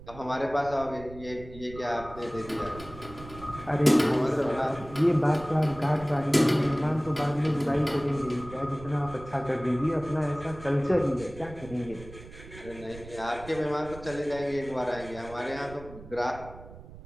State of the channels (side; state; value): right; noise; rumble, 16 dB below the sound